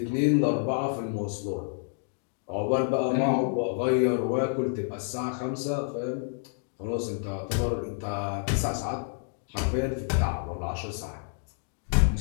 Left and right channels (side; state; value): right; silent; digital silence